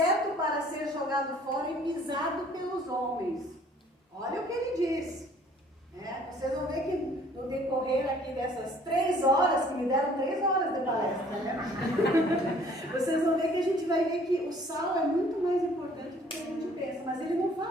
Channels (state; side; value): normal; both; correlation 0.56